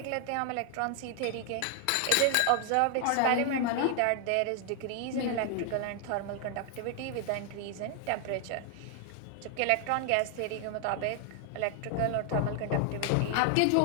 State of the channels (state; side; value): different; both; correlation 0.00